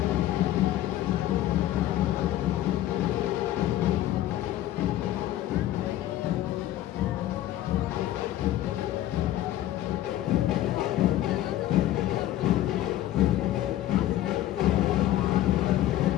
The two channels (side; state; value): right; quieter; 13.7 dB